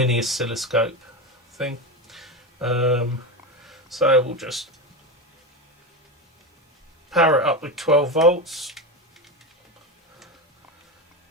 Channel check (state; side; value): normal; both; correlation 0.18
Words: oscilloscope thing. So we'll just power it up with 12 volts,